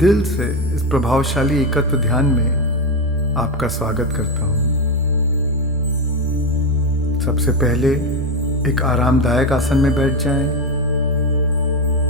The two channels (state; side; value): normal; both; correlation 0.12